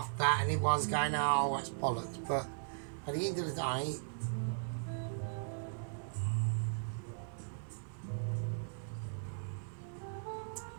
at and everyone's going, oh, that's bollocks. But at the end of the day,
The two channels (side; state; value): left; silent; digital silence